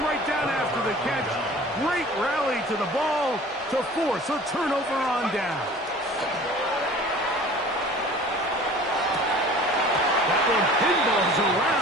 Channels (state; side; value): normal; both; correlation 0.45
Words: right down after the catch. Great rally to the ball to force a turnover on down. That one pinballs